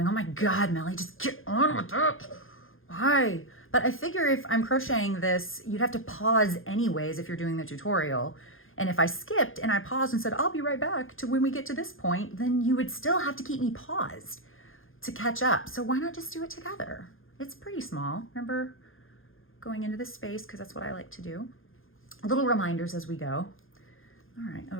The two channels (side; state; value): right; late; 0.60 ms